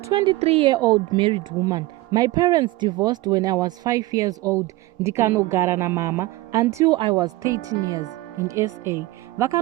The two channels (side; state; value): left; quieter; 19.1 dB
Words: married woman. My parents divorced when I was 5 years old. Ndikanogara na mama until I was 13 years in SA.